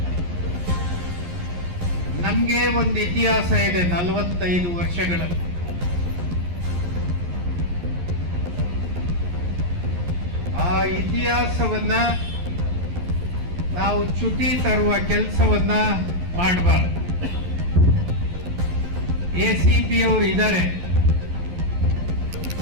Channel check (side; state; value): left; late; 11 ms